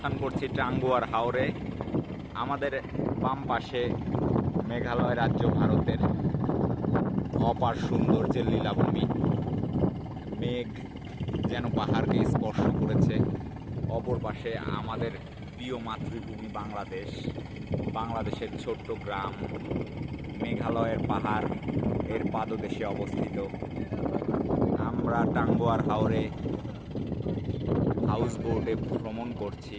করছি টাঙ্গুয়ার হাওরে। আমাদের বাম পাশে মেঘালয় রাজ্য, ভারতের অপার সৌন্দর্যের লীলাভূমি। মেঘ যেন পাহাড়কে স্পর্শ করেছে। অপর পাশে আমাদের প্রিয় মাতৃভূমি বাংলাদেশ, বাংলাদেশের ছোট্ট গ্রাম মেঘালয়ের পাহাড় এর পাদদেশে অবস্থিত। আমরা টাঙ্গুয়ার হাওরে হাউস বোটে ভ্রমণ করছি।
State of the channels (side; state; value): both; identical; correlation 1.00